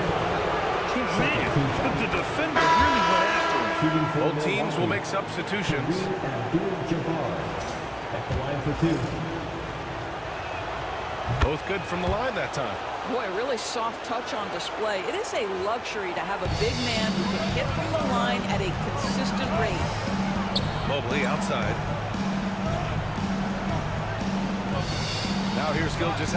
Man, the defender really went after him. Both teams will make substitutions. At the line for 2. Both good from the line that time. Boy, really soft touch on display. It is a luxury to have a big man who can hit from the line at a consistent rate. Mobley outside. Now here's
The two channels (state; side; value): identical; both; correlation 1.00